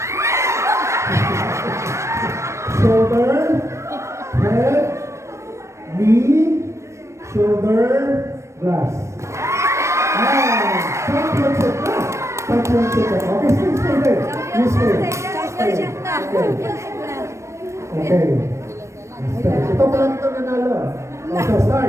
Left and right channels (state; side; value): late; left; 0.14 ms